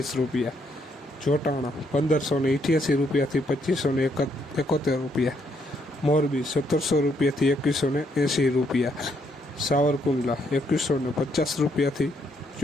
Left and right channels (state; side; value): normal; both; correlation 0.73